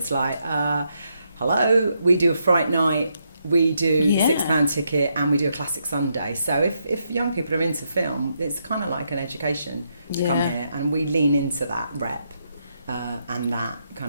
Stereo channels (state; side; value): inverted; both; correlation -0.79